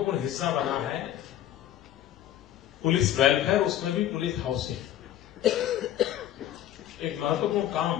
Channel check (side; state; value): right; quieter; 12.0 dB